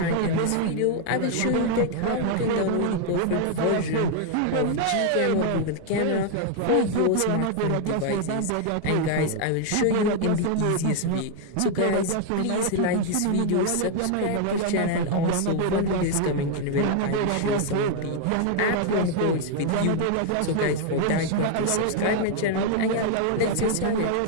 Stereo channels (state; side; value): different; both; correlation 0.00